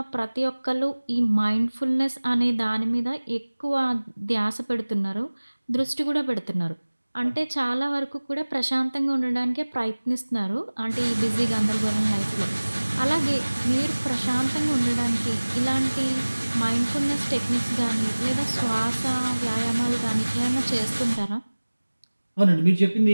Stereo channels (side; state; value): both; inverted; correlation -1.00